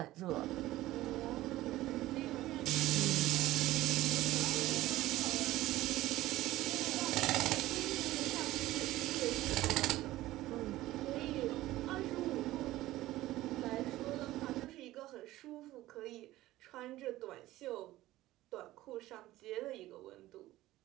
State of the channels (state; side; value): quieter; left; 16.3 dB